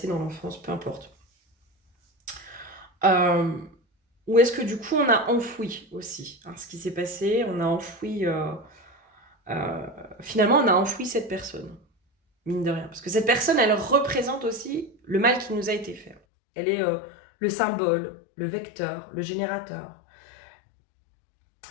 dans l'enfance, peu importe. Euh, ou est-ce que du coup, on a enfoui aussi hein, ce qui s'est passé, on a enfoui, euh, finalement, on a enfoui cette personne, mine de rien. Parce que cette personne, elle représente aussi le mal qui nous a été fait. Elle est le symbole, le vecteur, le générateur,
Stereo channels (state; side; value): drops out; right; at 16.2 s